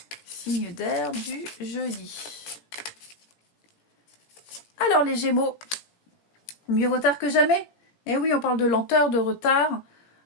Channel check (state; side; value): late; right; 17 ms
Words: Signe d'air du jeudi. Alors, les Gémeaux, mieux vaut tard que jamais. Eh oui, on parle de lenteur, de retard.